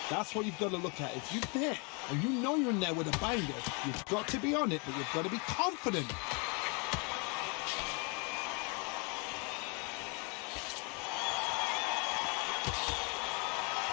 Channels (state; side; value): quieter; right; 33.3 dB